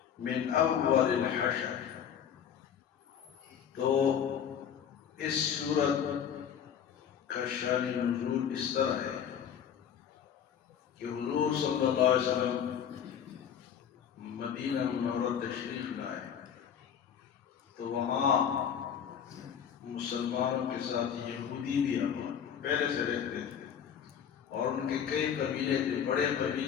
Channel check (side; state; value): right; quieter; 8.4 dB